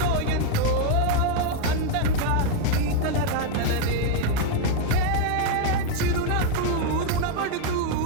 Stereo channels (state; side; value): different; both; correlation 0.00